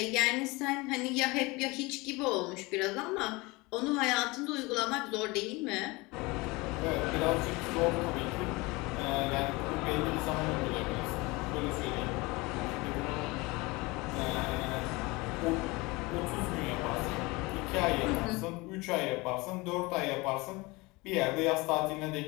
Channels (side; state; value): right; quieter; 24.0 dB